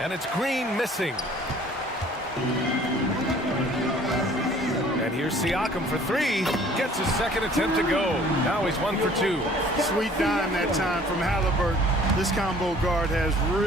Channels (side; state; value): both; normal; correlation 0.53